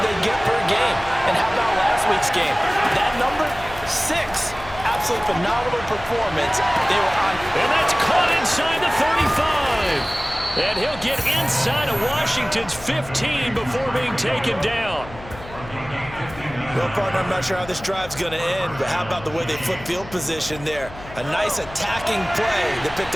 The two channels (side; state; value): left; noise; hum, 16 dB below the sound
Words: they get per game? And how about last week's game? That number, 6. Absolutely phenomenal performance. They were on. And that's caught inside the 35. And he'll get inside of Washington's 15 before being taken down. Well, partner, I'm not sure how this drive's going to end, but how about the way they flip field position there? A nice attacking play that picked